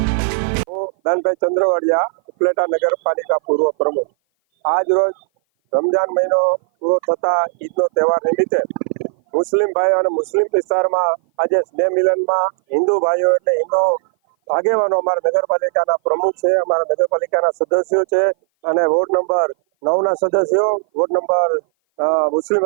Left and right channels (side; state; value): left; silent; 57 dB below the other